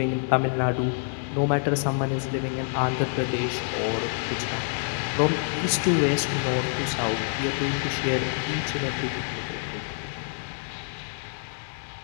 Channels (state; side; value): silent; right; 60 dB below the other